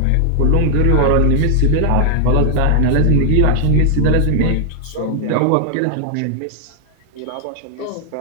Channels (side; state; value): both; different; correlation 0.00